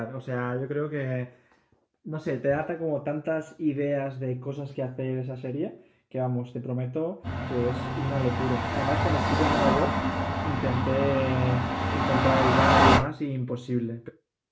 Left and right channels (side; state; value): both; identical; correlation 1.00